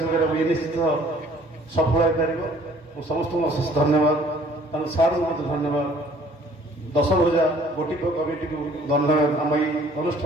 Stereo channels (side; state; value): both; normal; correlation 0.56